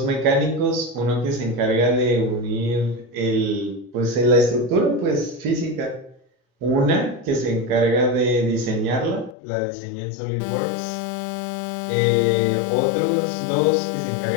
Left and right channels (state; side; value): drops out; right; at 9.3 s